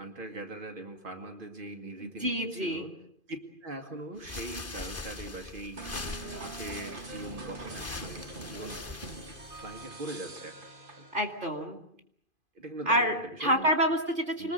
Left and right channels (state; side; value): late; left; 2.5 ms